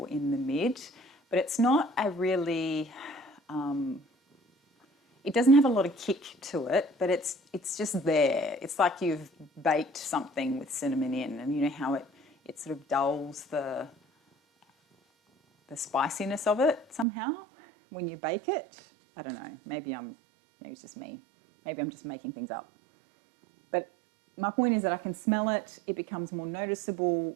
in the mid, but it's not a really, it doesn't have a lot of kick to it, but it's just there. It's like you've baked something with cinnamon in, and you know how it sort of dulls the spiciness of it somehow when you bake it. I don't know, maybe it's just me. Maybe I'm just making things up. But my point is that I can smell it, it becomes more noticeable,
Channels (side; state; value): left; drops out; at 17.1 s